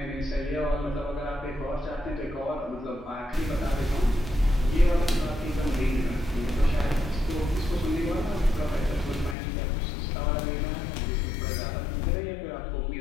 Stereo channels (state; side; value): drops out; right; at 9.3 s